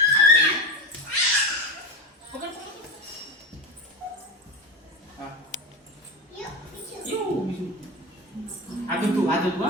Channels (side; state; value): both; normal; correlation 0.21